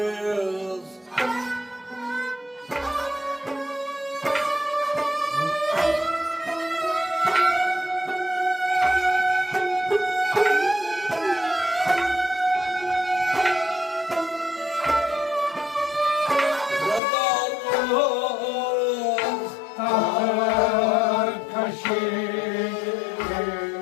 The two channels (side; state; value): right; drops out; at 17.0 s